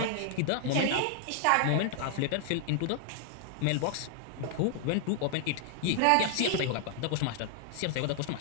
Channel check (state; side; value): different; both; correlation 0.00